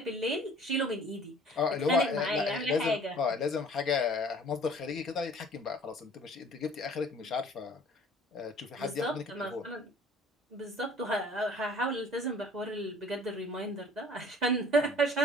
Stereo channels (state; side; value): normal; both; correlation 0.50